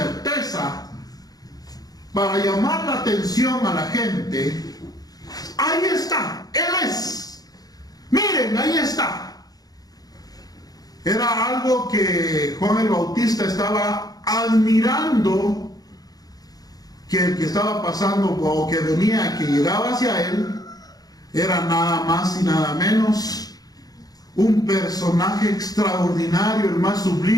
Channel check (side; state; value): right; late; 0.18 ms